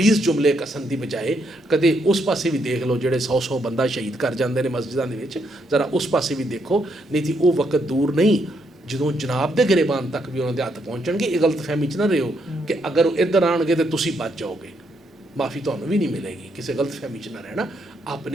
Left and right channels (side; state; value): both; normal; correlation 0.76